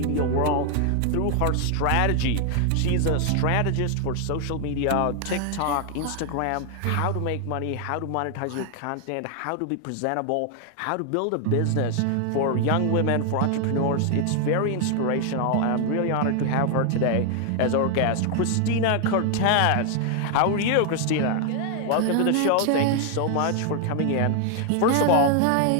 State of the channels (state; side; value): different; both; correlation 0.00